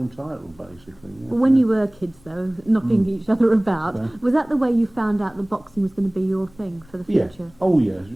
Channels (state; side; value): noise; left; rumble, 28 dB below the sound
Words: title, basically. Yeah. When you were kids, though, knocking each other about, Yeah. was that the way you found out that boxing was going to be your thing for the future? Yeah. Oh, yes.